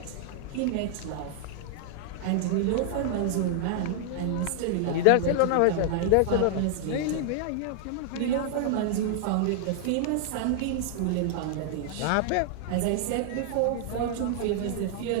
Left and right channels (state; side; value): different; both; correlation 0.00